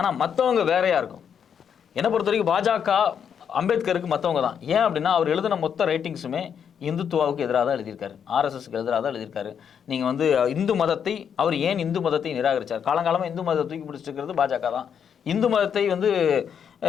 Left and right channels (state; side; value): quieter; right; 7.8 dB